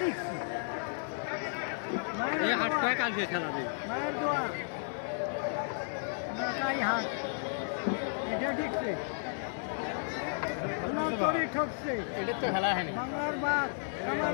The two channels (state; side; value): silent; right; 56 dB below the other